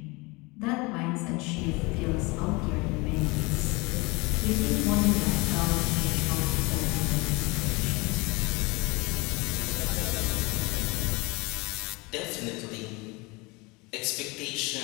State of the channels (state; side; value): quieter; right; 25.6 dB